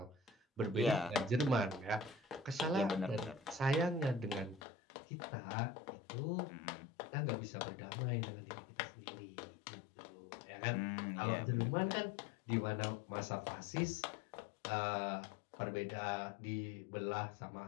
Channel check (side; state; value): right; drops out; at 4.6 s